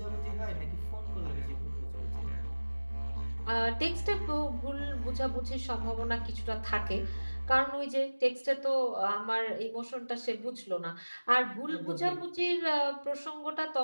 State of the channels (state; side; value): inverted; both; correlation -1.00